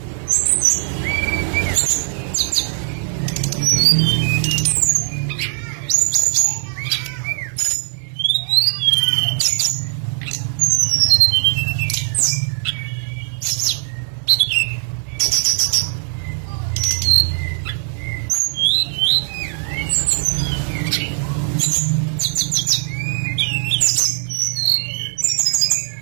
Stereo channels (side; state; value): left; silent; 66 dB below the other